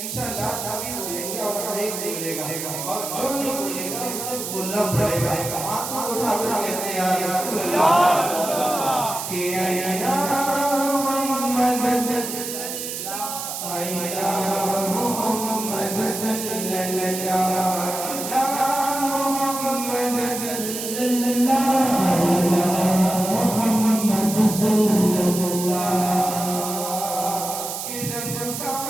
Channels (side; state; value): right; noise; hiss, 6 dB below the sound